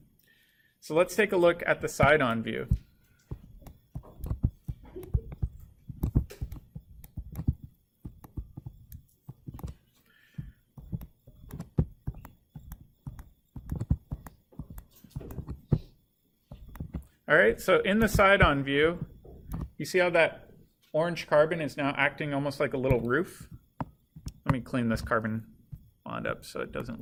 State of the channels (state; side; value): identical; both; correlation 1.00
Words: So let's take a look at the side-on view. All right, so in the side-on view, you see how that orange carbon is now acting almost like a little roof? Let me clean this carbon bond up so it doesn't